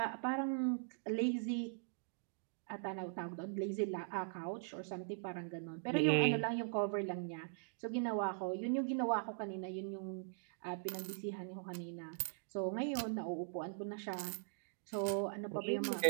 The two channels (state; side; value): silent; left; digital silence